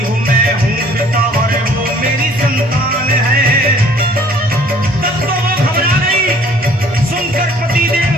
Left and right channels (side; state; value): both; normal; correlation 0.56